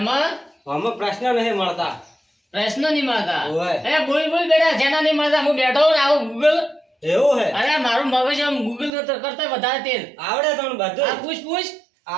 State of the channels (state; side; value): drops out; left; at 8.9 s